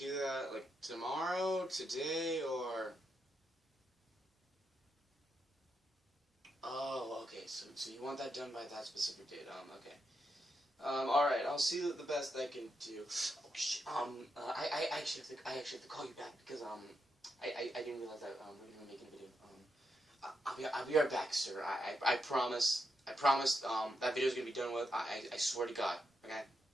that, like, tomorrow, today, or... Oh, okay, so you want that done by that specific date, okay. Alright, I'll see the best I can do. Oh, shit, I actually have to call you back, because, I didn't realize that, we were making a video. I'll be right back, sir. I promise, that video's gonna be done with, I swear to God, okay?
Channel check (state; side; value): normal; both; correlation 0.83